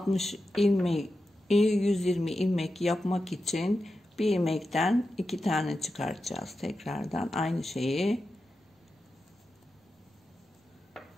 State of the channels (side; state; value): both; normal; correlation 0.90